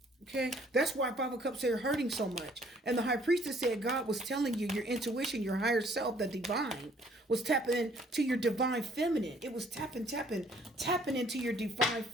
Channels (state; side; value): normal; both; correlation 0.60